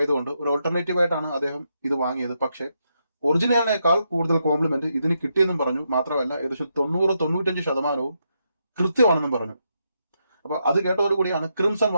ഒരു ഓൾട്ടർനേറ്റീവ് ആയിട്ടാണ് അദ്ദേഹം ഇത് വാങ്ങിയത്. പക്ഷേ ഒറിജിനലിനേക്കാൾ കൂടുതൽ കോംപ്ലിമെന്റ് ഇതിന് കിട്ടിയെന്നും പറഞ്ഞു. മാത്രമല്ല ഏകദേശം 90-95% കൃത്യമാണെന്നും പറഞ്ഞു. അപ്പൊ അത് കേട്ടതോടുകൂടിയാണ് ക്രിംസൺ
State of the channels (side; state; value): both; inverted; correlation -0.81